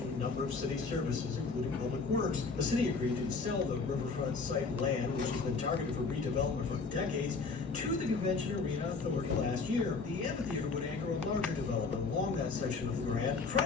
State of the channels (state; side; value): quieter; right; 4.4 dB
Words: a number of city services, including public works. The city agreed to sell the riverfront site land, which has been targeted for redevelopment for decades, to the Convention Arena Authority last year. The amphitheater would anchor a larger development along that section of the grant.